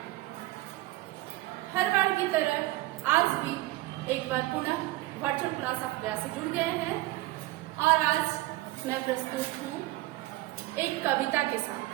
हर बार की तरह आज भी एक बार पुनः वर्चुअल क्लास ऑफ व्यास से जुड़ गए हैं और आज मैं प्रस्तुत हूँ एक कविता के साथ।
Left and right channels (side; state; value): left; quieter; 18.3 dB